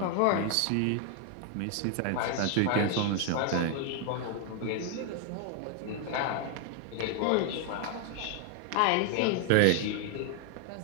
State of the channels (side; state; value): both; different; correlation 0.00